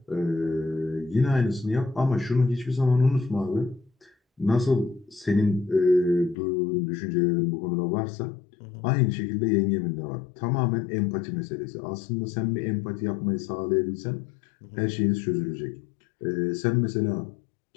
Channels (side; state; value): right; drops out; at 6.4 s